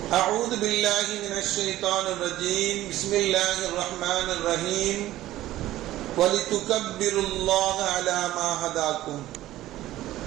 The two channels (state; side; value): quieter; left; 14.9 dB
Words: أعوذ بالله من الشيطان الرجيم بسم الله الرحمن الرحيم وَلِتُكَبِّرُوا اللَّهَ عَلَى مَا هَدَاكُمْ